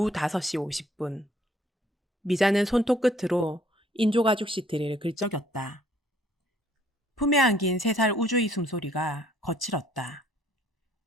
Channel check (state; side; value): normal; both; correlation 0.61